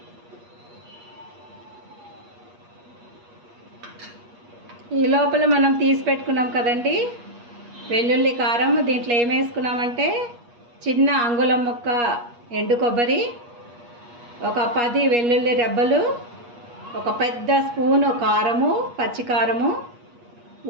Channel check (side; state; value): left; late; 8.4 ms